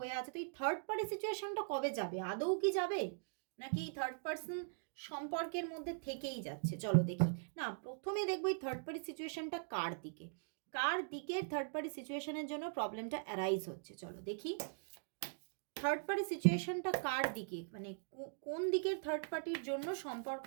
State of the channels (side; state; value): left; silent; digital silence